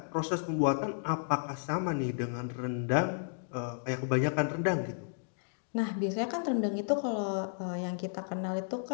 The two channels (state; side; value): silent; right; digital silence